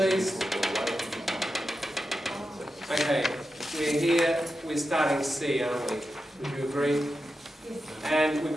Okay, we're here. We're starting C, aren't we? Would you agree? And we've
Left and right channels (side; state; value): both; normal; correlation 0.90